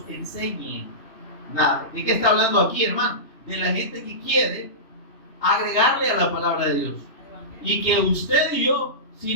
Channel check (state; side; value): late; right; 3.0 ms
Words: enseñe nada. ¿De qué está hablando aquí, hermano? De la gente que quiere agregarle a la palabra de Dios. Y que usted y yo,